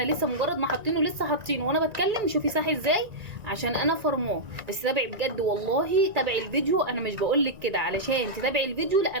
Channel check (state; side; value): late; left; 1.9 ms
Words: لسه مجرد ما حاطينه لسه حاطينه وانا بتكلم. شوفي ساح ازاي عشان انا فرماه. بس تابعي بجد والله، تابعي الفيديو. انا مش بقولك كده علشان تتابعي الفيديو، لا،